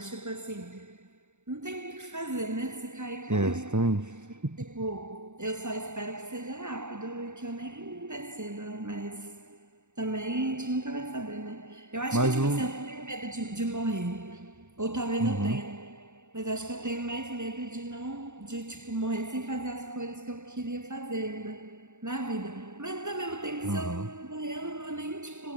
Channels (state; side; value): late; left; 0.84 ms